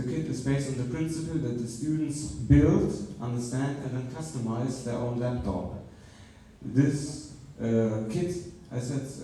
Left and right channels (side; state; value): both; identical; correlation 1.00